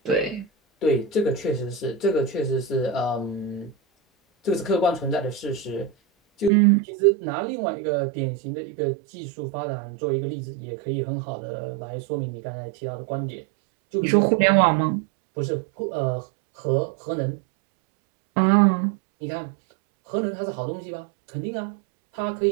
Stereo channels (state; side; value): drops out; left; at 6.5 s